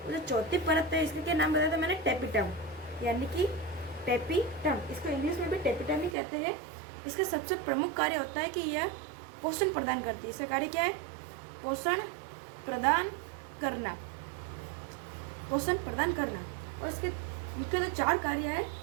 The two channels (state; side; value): drops out; left; at 6.2 s